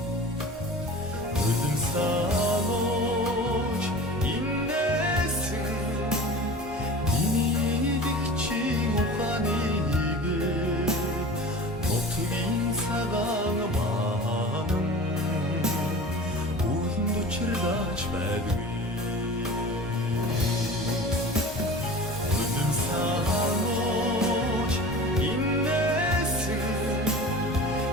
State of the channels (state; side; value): normal; both; correlation 0.37